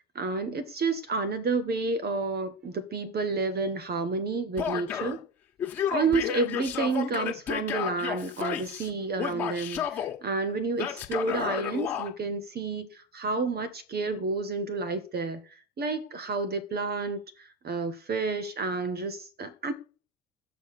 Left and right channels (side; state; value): both; normal; correlation 0.19